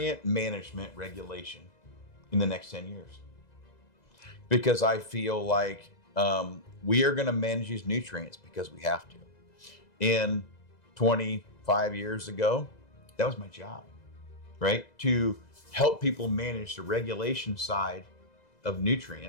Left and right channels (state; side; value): late; right; 2.0 ms